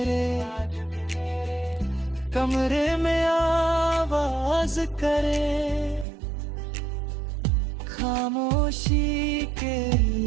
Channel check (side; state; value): left; drops out; at 6.1 s